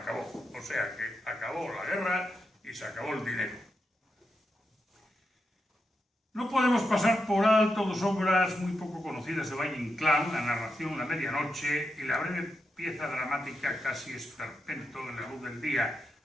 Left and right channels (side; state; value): both; normal; correlation 0.86